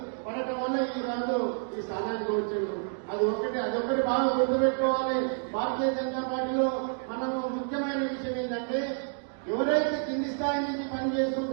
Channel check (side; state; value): left; silent; 58 dB below the other